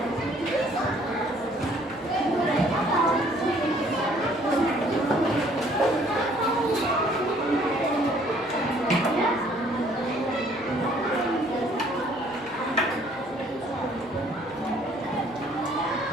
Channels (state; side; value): normal; both; correlation 0.60